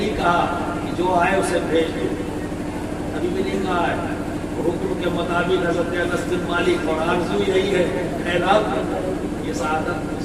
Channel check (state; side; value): identical; both; correlation 1.00